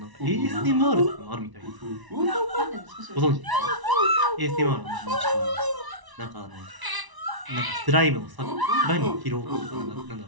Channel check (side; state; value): left; late; 1.0 ms